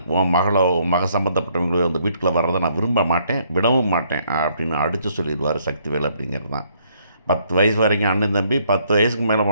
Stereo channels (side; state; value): both; inverted; correlation -0.68